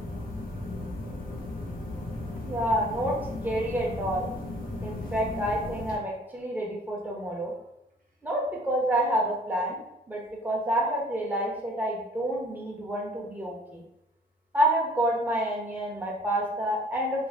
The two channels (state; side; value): normal; both; correlation 0.54